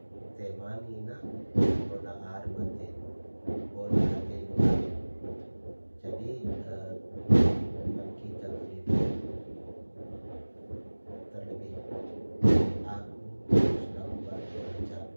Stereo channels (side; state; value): both; inverted; correlation -1.00